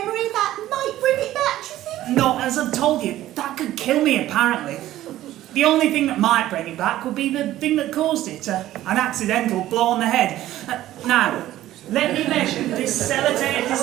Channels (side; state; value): left; quieter; 14.2 dB